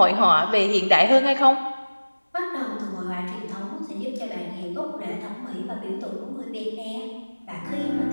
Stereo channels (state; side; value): inverted; both; correlation -1.00